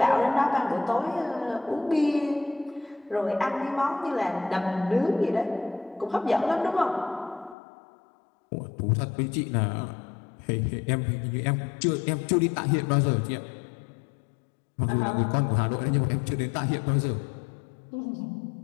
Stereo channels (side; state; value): right; drops out; at 7.6 s